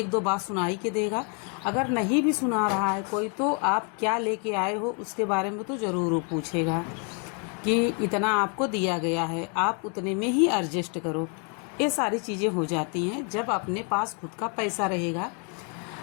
बात सुनाई के देगा। अगर नहीं भी सुना रहा है कोई, तो आप क्या लेके आए हो उसके बारे में तो ज़रूर वो पूछेगा कि इतना आपको दिया गया है, आप उतने में ही एडजस्ट करो। ये सारी चीज़ें हो जाती हैं जब अपने पास खुद का पैसा रहेगा।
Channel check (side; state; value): right; quieter; 38.2 dB